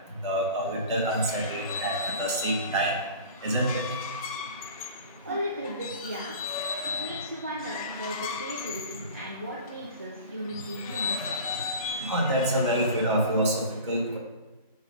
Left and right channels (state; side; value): inverted; both; correlation -0.38